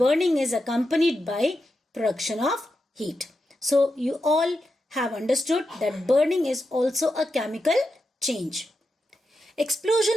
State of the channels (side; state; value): both; normal; correlation 0.88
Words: is accompanied by production of heat. So you all have understood that burning is also a chemical change.